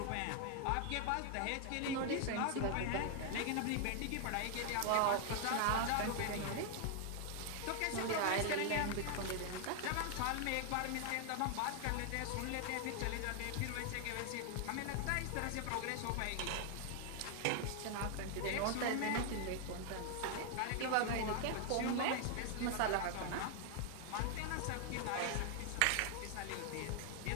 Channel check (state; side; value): different; both; correlation 0.00